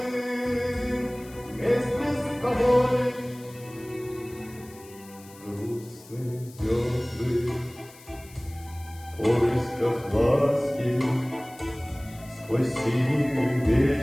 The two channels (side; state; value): left; noise; hiss, 22 dB below the sound